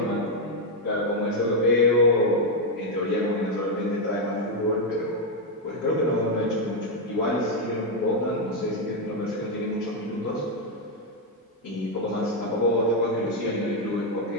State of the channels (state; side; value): normal; both; correlation 0.02